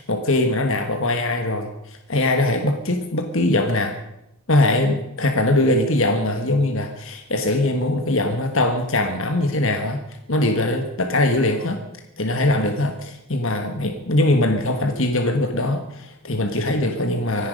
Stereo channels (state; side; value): normal; both; correlation 0.27